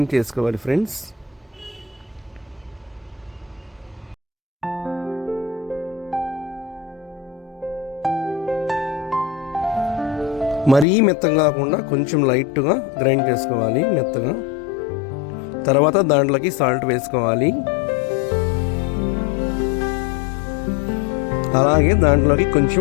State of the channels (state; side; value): drops out; right; at 10.9 s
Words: చేసుకోవాలి ఫ్రెండ్స్. మరీ మెత్తగా కాకుండా కొంచెం లైట్గా గ్రైండ్ చేసుకోవాలి మెత్తగా. తర్వాత దాంట్లోకి సాల్ట్ వేసుకోవాలి. అలాగే దాంట్లోకి